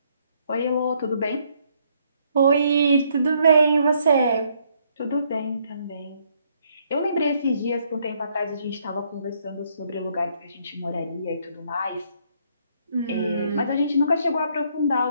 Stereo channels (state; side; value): inverted; both; correlation -0.70